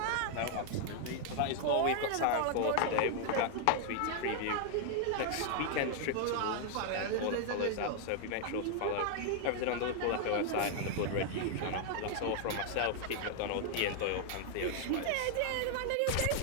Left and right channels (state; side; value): different; both; correlation 0.00